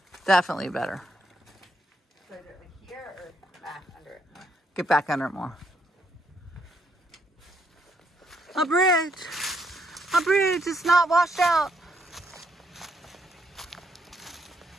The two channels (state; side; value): normal; both; correlation 0.74